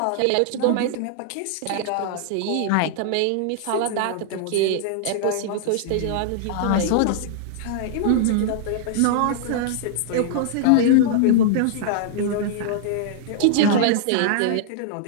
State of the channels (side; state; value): both; different; correlation -0.01